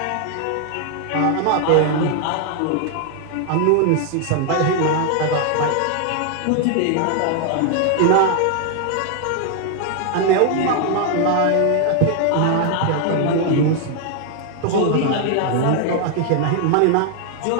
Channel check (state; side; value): different; both; correlation 0.00